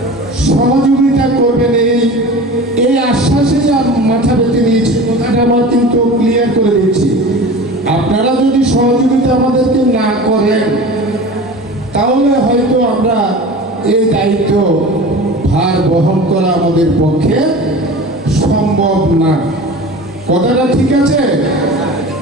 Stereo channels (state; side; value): normal; both; correlation 0.36